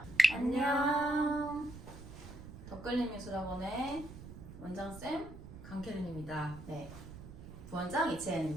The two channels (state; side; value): noise; right; rumble, 14 dB below the sound